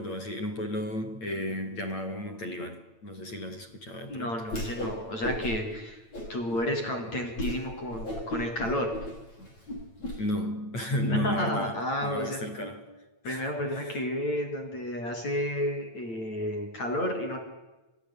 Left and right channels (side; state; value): right; late; 8.9 ms